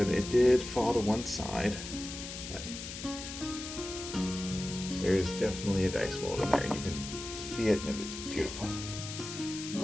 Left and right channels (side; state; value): left; noise; hiss, 9 dB below the sound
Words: it did fall to one side, but there's definitely a dice mold in there, and you can see it, and it's beautiful.